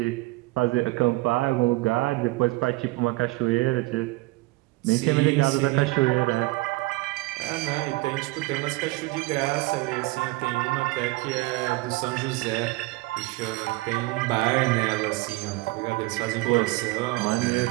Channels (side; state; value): left; quieter; 21.8 dB